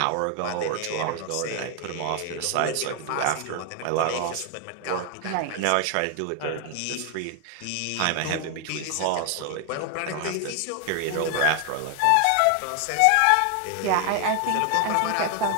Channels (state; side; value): different; both; correlation 0.00